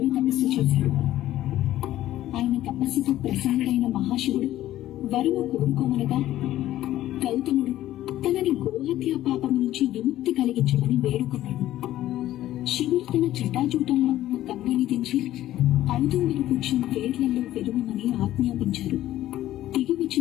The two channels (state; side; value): quieter; right; 13.9 dB